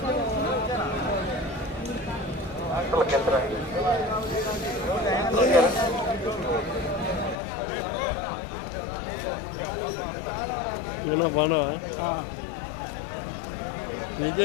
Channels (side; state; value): right; drops out; at 7.4 s